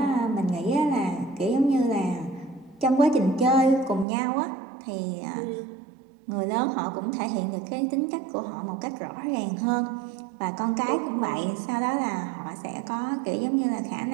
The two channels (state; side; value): drops out; left; at 4.0 s